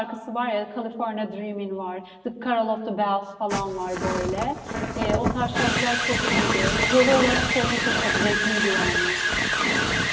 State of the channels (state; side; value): identical; both; correlation 1.00